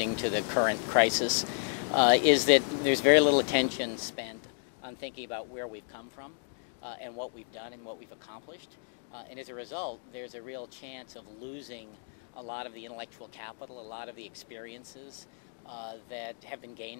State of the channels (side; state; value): right; silent; digital silence